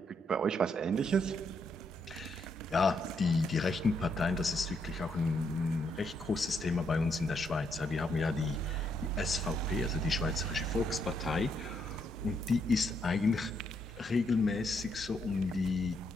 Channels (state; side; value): normal; both; correlation 0.76